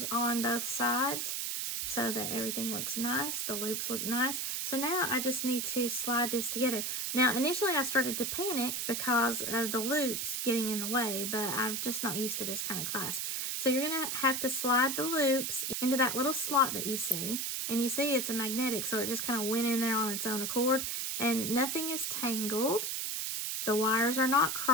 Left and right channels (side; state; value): right; noise; hiss, 1 dB below the sound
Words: on both sides so that everything looks nice. The loops look nice. So now I just need to slide this together. Now initially I started to panic because of the loops getting in the way, but I'm just not used to this kind of clasp. So you're going to have to slide the loops into that little slot that you see. And you see it's a magnetic, so it just kind of went in there on its own accord. And nothing is tangled. The wires are not